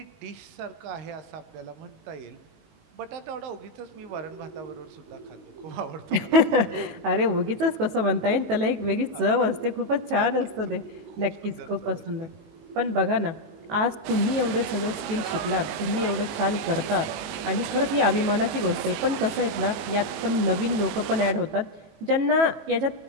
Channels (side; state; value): left; late; 18 ms